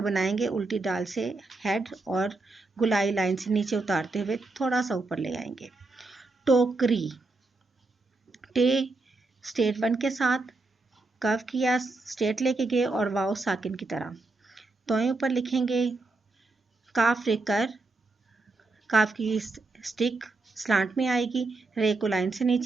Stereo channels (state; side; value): quieter; left; 3.4 dB